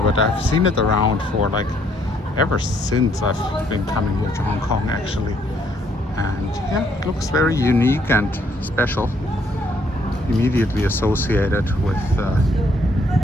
I've seen it around for like ever since I've been coming here to Hong Kong actually. And yeah, it looks very unique and special, immediately associated with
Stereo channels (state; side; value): normal; both; correlation 0.68